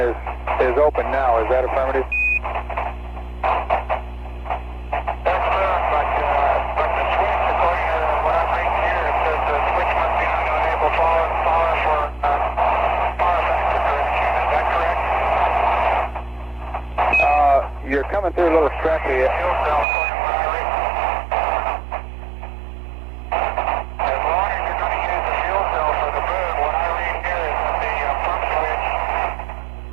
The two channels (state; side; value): drops out; left; at 19.9 s